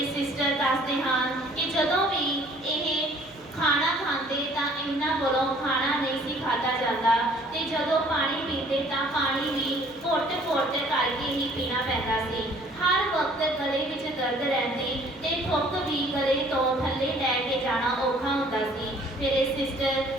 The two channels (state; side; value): noise; right; hum, 29 dB below the sound